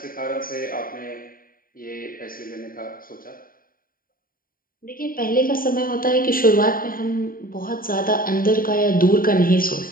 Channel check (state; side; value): late; right; 0.41 ms